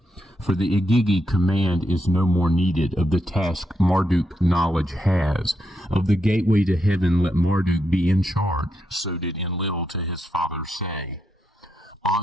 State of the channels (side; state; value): both; normal; correlation 0.82